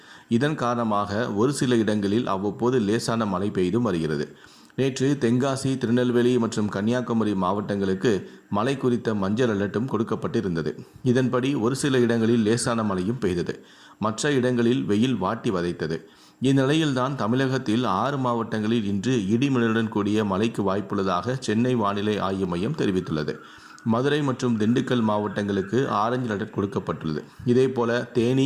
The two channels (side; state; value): both; identical; correlation 1.00